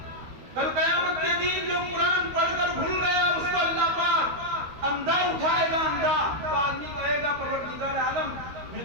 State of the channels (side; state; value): left; late; 13 ms